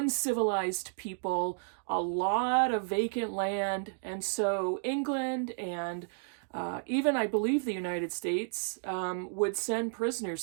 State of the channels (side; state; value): left; silent; digital silence